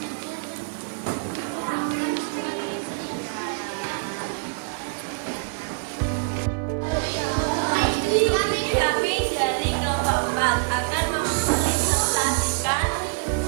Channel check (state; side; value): quieter; left; 33.3 dB